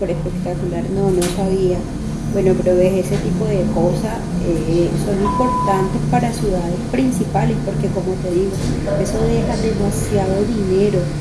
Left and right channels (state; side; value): identical; both; correlation 1.00